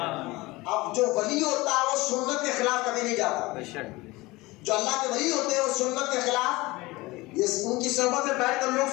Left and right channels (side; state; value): right; quieter; 21.3 dB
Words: اب جو ولی ہوتا ہے وہ سنت کے خلاف کبھی نہیں جاتا، جو اللہ کے ولی ہوتے ہیں وہ سنت کے خلاف، یہ ان کی صحبت میں بیٹھ کر